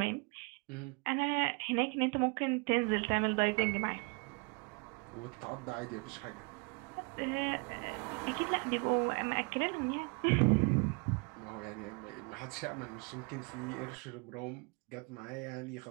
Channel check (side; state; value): left; quieter; 32.0 dB